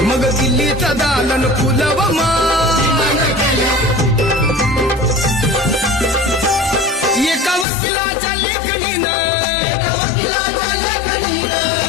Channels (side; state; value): right; drops out; at 7.7 s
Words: मग दिल्लीचं दालन फुलं व माय. एका वकिलाच्या लेखणीनं,